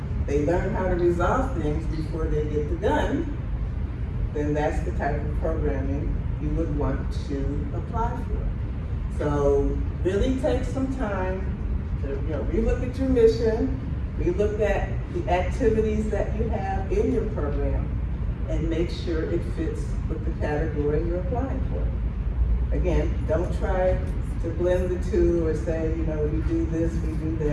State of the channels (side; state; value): both; identical; correlation 1.00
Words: they learn how to resolve things before they get the gun, then that's the type of programming you would want to apply for. So really take some time to, relook at your mission, relook at the activities that you have in your program, and make sure it fits with the category you're applying for. Again, don't try to blend the two or say, we do this, we do